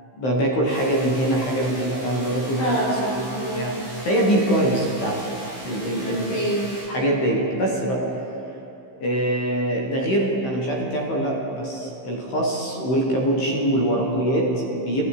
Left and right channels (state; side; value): late; right; 15 ms